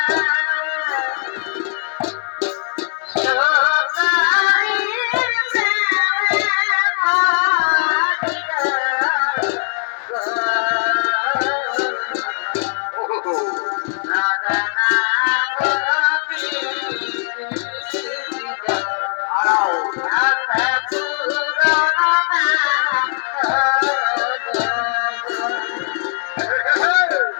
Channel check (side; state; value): right; silent; digital silence